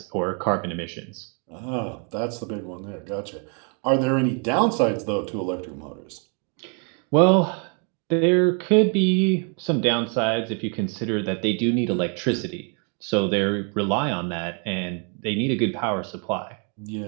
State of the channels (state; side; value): quieter; left; 39.2 dB